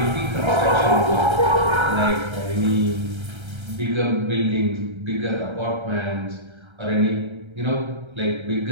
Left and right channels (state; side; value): late; left; 1.3 ms